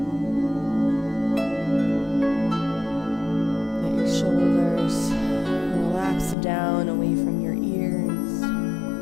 Shoulders relax down away from your ears.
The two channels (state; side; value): drops out; right; at 6.4 s